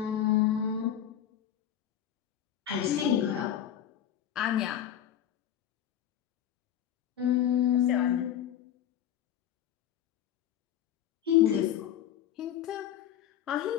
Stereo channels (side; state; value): right; quieter; 10.5 dB